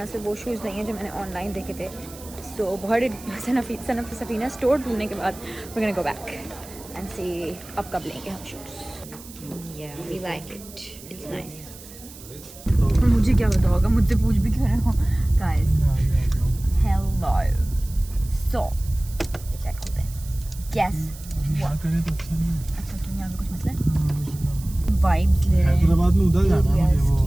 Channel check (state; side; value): noise; right; hiss, 18 dB below the sound